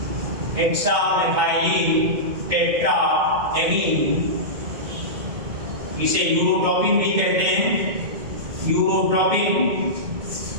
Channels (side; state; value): left; late; 2.2 ms